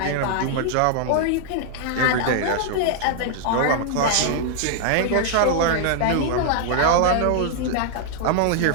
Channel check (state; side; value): different; both; correlation -0.01